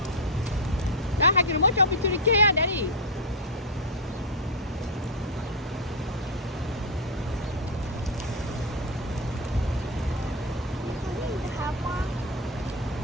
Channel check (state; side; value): normal; both; correlation 0.04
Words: Nah, hakin mo jump into the kaya, Daddy.